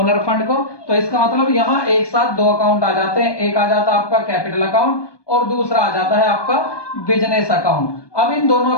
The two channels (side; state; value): right; late; 1.2 ms